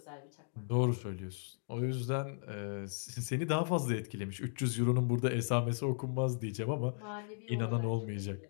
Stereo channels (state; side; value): silent; right; digital silence